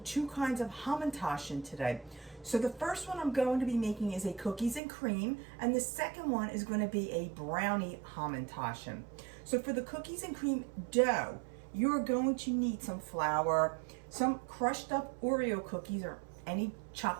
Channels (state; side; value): drops out; left; at 4.8 s